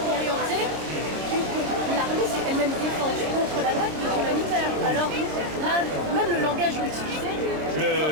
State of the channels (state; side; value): late; left; 26 ms